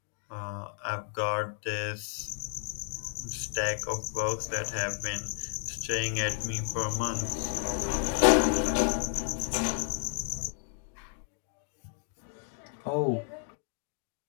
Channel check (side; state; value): right; silent; 56 dB below the other